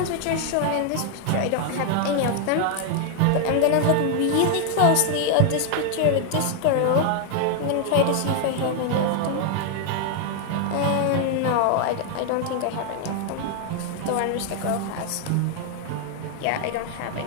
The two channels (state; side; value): different; both; correlation 0.00